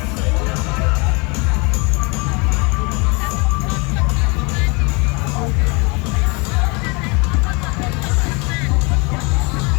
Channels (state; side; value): quieter; right; 29.7 dB